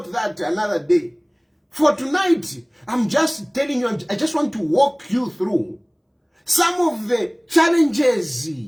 that another day. For tonight, I'm just telling you, I just want to walk you through some of the challenges,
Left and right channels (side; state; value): both; identical; correlation 1.00